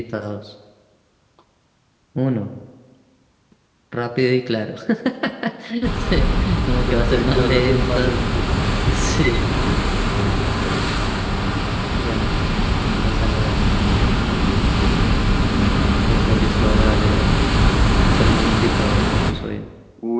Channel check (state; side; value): identical; both; correlation 1.00